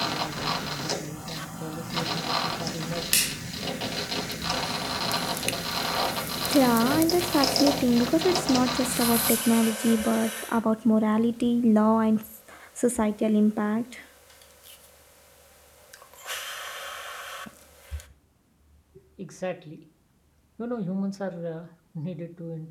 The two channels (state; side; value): identical; both; correlation 1.00